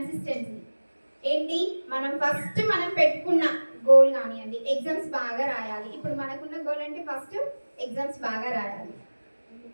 ఏంటి? మనం పెట్టుకున్న గోల్ కానివ్వండి, ఎగ్జామ్స్ బాగా రాయాలి. ఇప్పుడు మనకున్న గోల్ అంటే ఫస్ట్ ఎగ్జామ్స్ బాగా రాయాలి.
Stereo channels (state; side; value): inverted; both; correlation -1.00